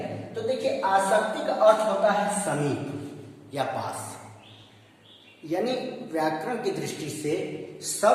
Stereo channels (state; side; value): identical; both; correlation 1.00